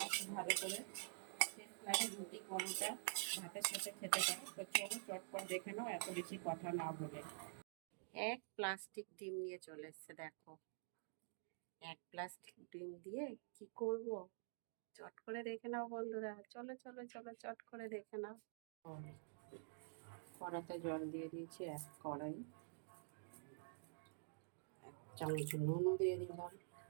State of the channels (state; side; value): silent; left; digital silence